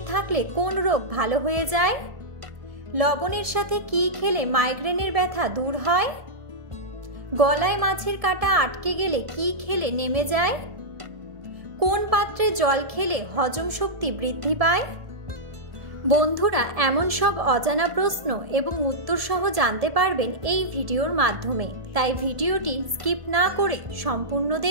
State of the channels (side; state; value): left; late; 1.7 ms